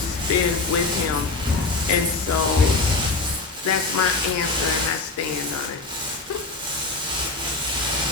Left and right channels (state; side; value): quieter; right; 3.7 dB